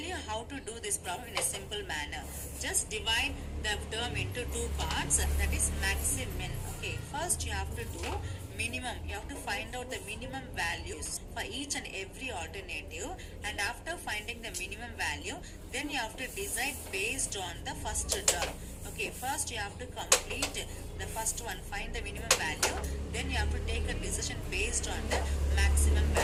how to do this problem in a simple manner. Just divide the term into two parts, that is maximum. Okay, first you have to do minimum. You have to find out the minimum values for each and every alternative, and after finding the minimum value, then you have to decide based on the first term. Okay, first you have to complete the first one, find the minimum value, then you have to take a decision based on the maximum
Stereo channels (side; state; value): both; identical; correlation 1.00